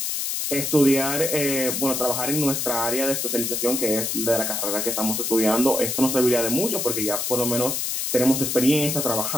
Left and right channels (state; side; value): noise; left; hiss, 1 dB below the sound